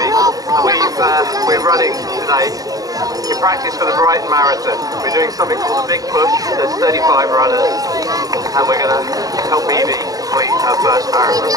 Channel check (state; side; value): late; left; 0.18 ms